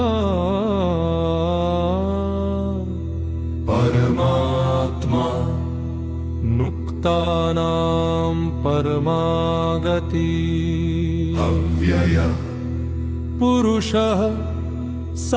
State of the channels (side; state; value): both; identical; correlation 1.00